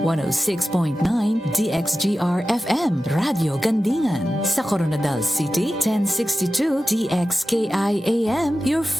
DXGR-FM, Radio Gandingan. Sa Coronadal City, 1062 DXKI-AM, your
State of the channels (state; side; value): normal; both; correlation 0.94